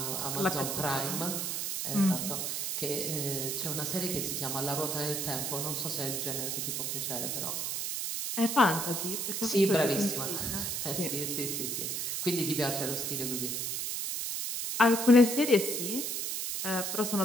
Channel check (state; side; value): noise; right; hiss, 2 dB below the sound